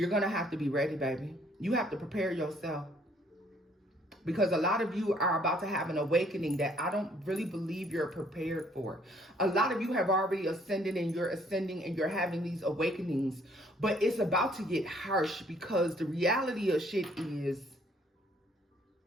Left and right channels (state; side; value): normal; both; correlation 0.63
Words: going to have to be ready, baby. You have to prepare yourself. Because a lot of you are about to have an awakening that I don't really believe you're prepared for. A lot of you have already ascended and you're ascending and you're having these awakenings. But it's about to get harsh because the reality of shit is